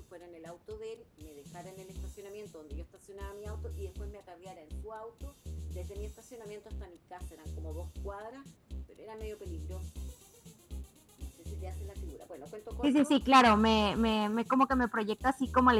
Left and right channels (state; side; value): identical; both; correlation 1.00